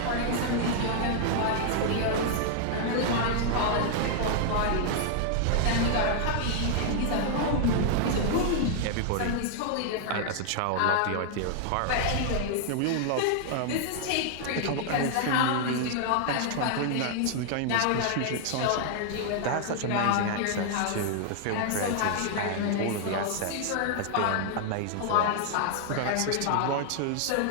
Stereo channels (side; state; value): both; different; correlation 0.00